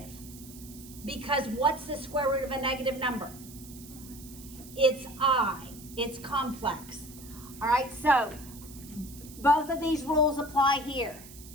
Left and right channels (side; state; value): right; noise; hiss, 17 dB below the sound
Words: because what's the square root of a negative number? It's I. It's complex. All right, so both of these rules apply here,